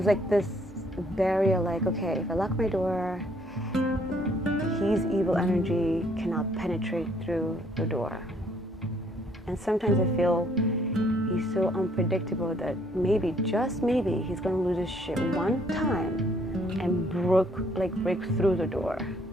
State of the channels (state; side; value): normal; both; correlation 0.65